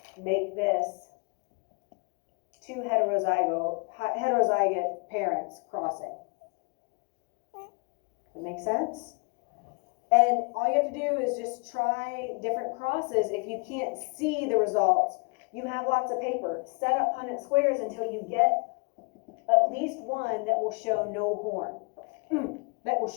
make this two heterozygous parents crossing. That makes sense? And all you have to do is just try different crosses. If you can't see the results, you have lots of paper. Set up Punnett squares until you get at least one that will show no horn. That will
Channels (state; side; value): quieter; right; 35.2 dB